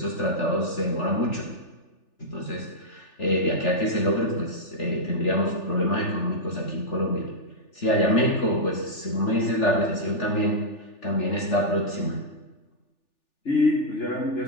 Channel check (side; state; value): right; late; 3.4 ms